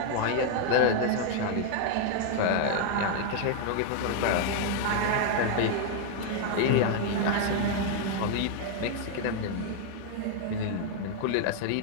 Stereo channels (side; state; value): both; different; correlation 0.00